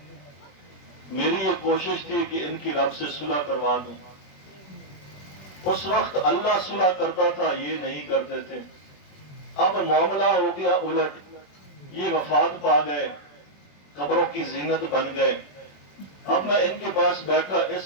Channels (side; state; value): right; late; 21 ms